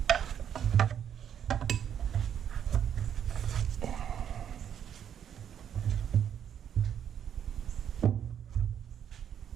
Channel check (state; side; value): quieter; left; 8.9 dB